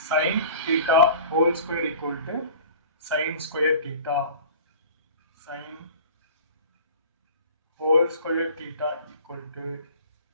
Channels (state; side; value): inverted; both; correlation -0.43